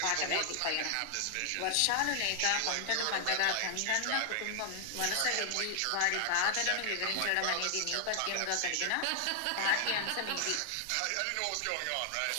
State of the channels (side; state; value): both; different; correlation 0.00